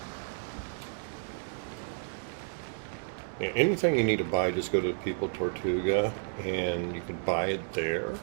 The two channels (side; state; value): left; silent; digital silence